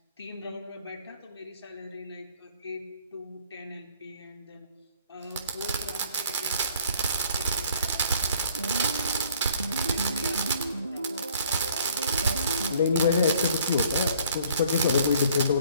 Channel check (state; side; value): inverted; both; correlation -0.58